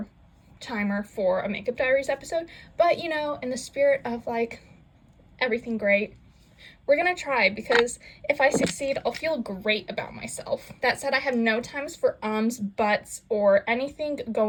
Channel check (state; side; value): identical; both; correlation 1.00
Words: timer for a Makeup Diaries episode. But you know, in the spirit of like everything great, we're gonna try, because if I succeed, I'll feel great about myself. That said, I have no times for ums, buts, or anything